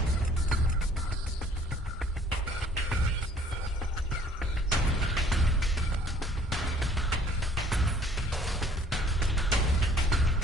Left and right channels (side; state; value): both; normal; correlation 0.57